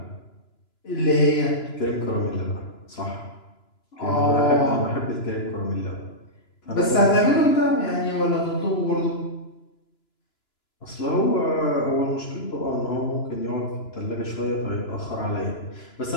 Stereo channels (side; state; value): right; late; 2.9 ms